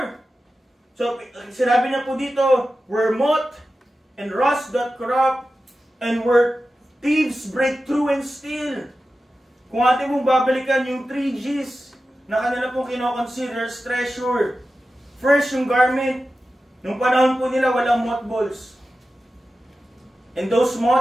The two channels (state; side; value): normal; both; correlation 0.93